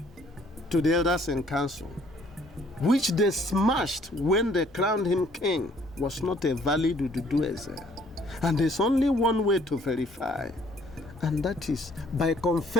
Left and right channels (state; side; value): normal; both; correlation 0.61